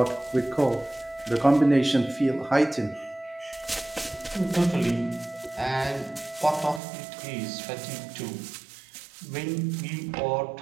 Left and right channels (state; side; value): drops out; left; at 6.8 s